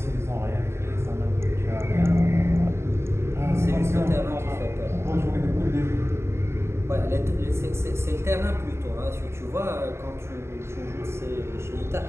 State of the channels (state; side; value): late; left; 0.13 ms